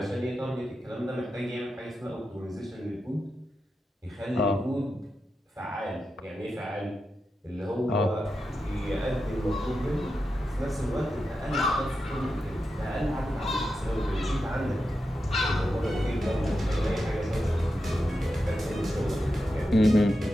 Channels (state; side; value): normal; both; correlation 0.89